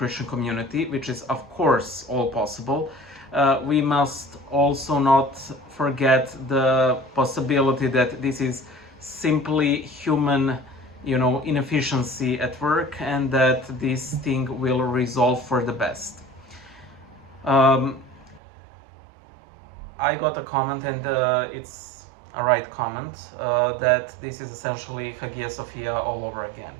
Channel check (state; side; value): drops out; left; at 18.4 s